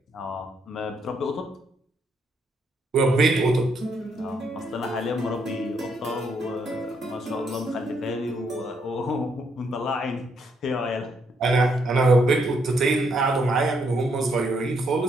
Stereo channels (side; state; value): both; normal; correlation 0.74